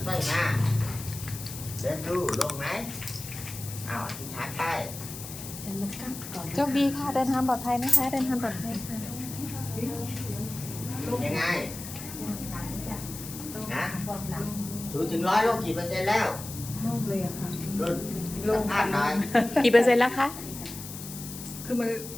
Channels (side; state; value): left; noise; hiss, 11 dB below the sound